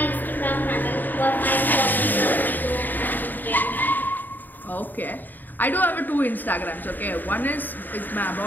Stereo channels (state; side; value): late; right; 0.089 ms